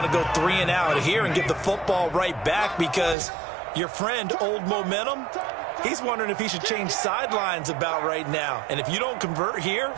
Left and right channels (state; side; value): drops out; left; at 3.2 s